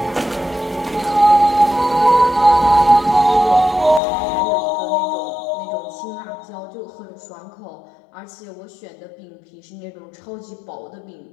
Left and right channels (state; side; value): drops out; right; at 4.0 s